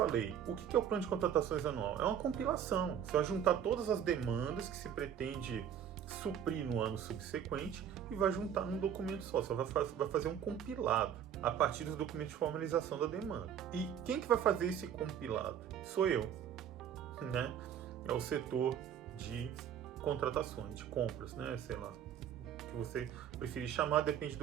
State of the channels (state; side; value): quieter; left; 9.0 dB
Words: o que é o plano de contratações anual? É uma compilação. Você vai juntar todas as demandas que se pretende suprir no ano subsequente e vai juntar num documento só. Você vai fazer um compilado a partir dos documentos de formalização da demanda. E quem que vai fazer esse compilado? Sou eu, né? É o setor de contratações, de compras, né? Sei lá, o que você preferir chamar, depende